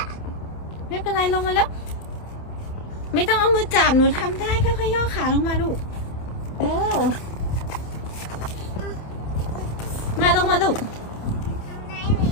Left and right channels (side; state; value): right; late; 28 ms